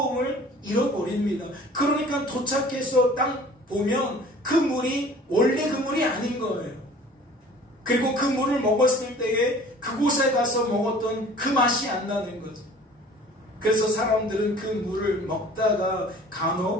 잃어버립니다. 그러니까 도착해서 딱 보면 그 물이 원래 그 물이 아닌 거예요. 그리고 그 물을 먹었을 때에 그곳에 가서 먹었던 그 맛이 안 나는 거죠. 그래서 사람들은 그 물을 먹다가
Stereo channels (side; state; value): both; normal; correlation 0.48